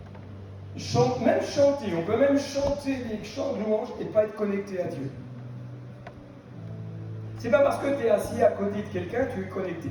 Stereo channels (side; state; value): both; identical; correlation 1.00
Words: même chanter, on peut même chanter des chants de louange et pas être connecté à Dieu. C'est pas parce que tu es assis à côté de quelqu'un que tu es